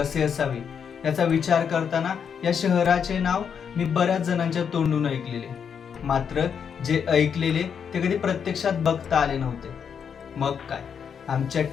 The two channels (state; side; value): quieter; right; 7.2 dB